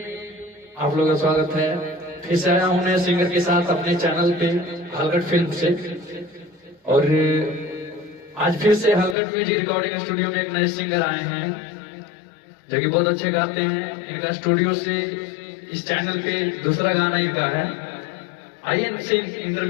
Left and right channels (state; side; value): drops out; right; at 9.2 s